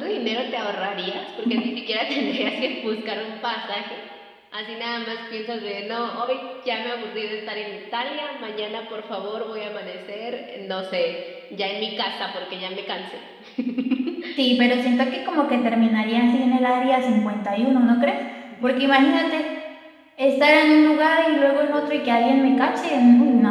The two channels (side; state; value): both; identical; correlation 1.00